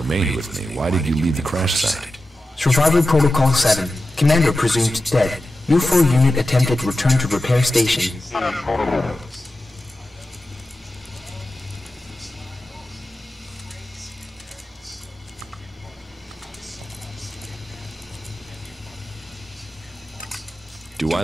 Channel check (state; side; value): normal; both; correlation 0.92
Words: with me. Why did you leave the crash site? Survival Protocol 7. Commander presumed dead. U4 unit attempted return to repair station. Do I